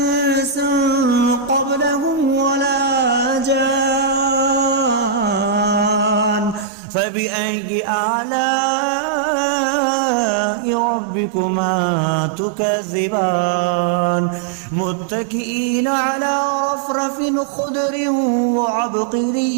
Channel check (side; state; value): left; drops out; at 6.7 s